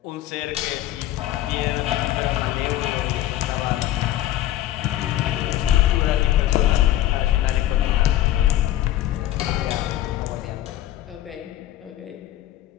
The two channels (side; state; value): right; quieter; 13.6 dB